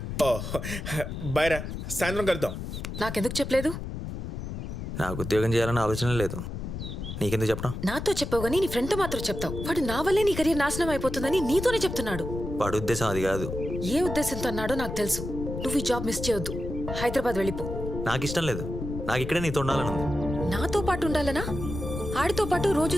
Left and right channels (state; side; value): noise; left; rumble, 6 dB below the sound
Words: ఓ బైరా, సాయంత్రం కలుద్దాం. నాకెందుకు చెప్పలేదు? నాకు ఉద్యోగం చేయాలన్న ఆలోచన లేదు. నీకెందుకు చెప్పడం? నాతో చెప్పావు కానీ నీ ఫ్రెండ్తో మాత్రం చెప్తావు. వాడు నా వల్లే నీ కెరీర్ నాశనం అయిపోతుందని నీతోనే చెప్తున్నాడు. వాడి ఉద్దేశం అది కాదు. ఏ ఉద్దేశంతో అన్నాడో నాకు తెలుసు. నువ్వు ఈ జాబ్ మిస్ చేయొద్దు. హైదరాబాద్ వెళ్ళిపో. నాకు ఇష్టం లేదు. నాకు ఇక్కడే నీతో ఉండాలని ఉంది. నాతో పాటు ఉండాలనా? ఆడితో పాటు రోజు